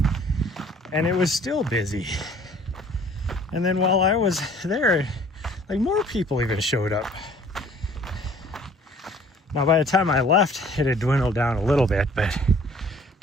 and it was still busy. And then while I was there, like more people even showed up. Now by the time I left, it had dwindled down a little bit, but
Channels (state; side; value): normal; both; correlation 0.53